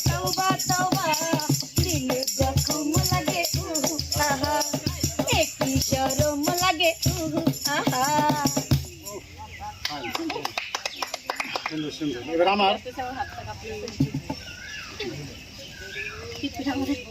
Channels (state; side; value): identical; both; correlation 1.00